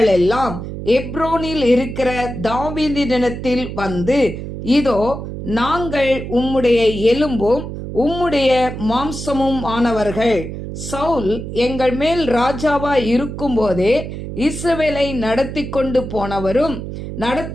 எல்லாம் எப்ரோனில் இருக்கிற தாவீதினிடத்தில் வந்து, இதோ நாங்கள் உம்முடைய எலும்பும் உம்முடைய மாம்சமும் ஆனவர்கள். சவுல் எங்கள் மேல் ராஜாவாய் இருக்கும்போதே இஸ்ரவேலை நடத்தி கொண்டு போனவரும்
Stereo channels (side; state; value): right; noise; hum, 8 dB below the sound